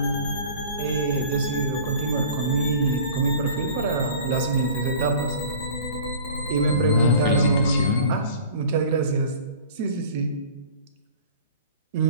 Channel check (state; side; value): inverted; both; correlation -0.43